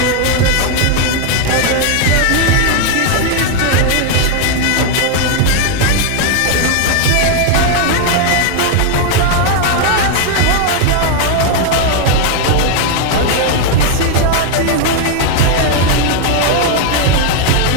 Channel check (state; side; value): different; both; correlation 0.01